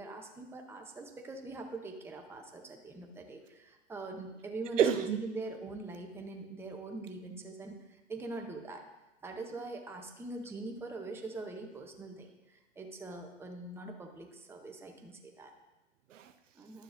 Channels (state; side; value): quieter; left; 5.4 dB